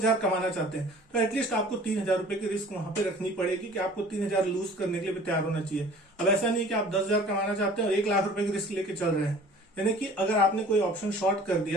कमाना चाहते हैं, तो एटलीस्ट आपको 3,000 रुपए की रिस्क वहां पे रखनी पड़ेगी कि आपको 3,000 लूज करने के लिए भी तैयार होना चाहिए। अब ऐसा नहीं कि आप 10,000 कमाना चाहते हैं और 1 लाख रुपए की रिस्क लेके चल रहे हैं। यानी कि अगर आपने कोई ऑप्शन शॉर्ट कर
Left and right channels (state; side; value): normal; both; correlation 0.48